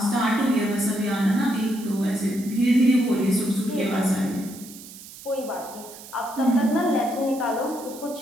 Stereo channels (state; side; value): noise; right; hiss, 16 dB below the sound